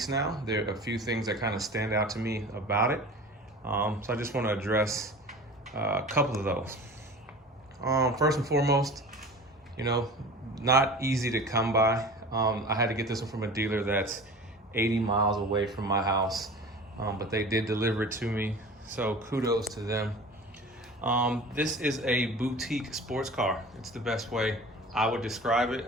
now. There are a few things that kind of stand out to me about it. So I just want to address a couple of those. First and foremost, not easy to come by. I had to get this one from a dealer that's 80 miles away from my house, but they did deliver it to me, so kudos to them. This is a boutique sports car. It's the best way I would describe it.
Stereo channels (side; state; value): both; normal; correlation 0.38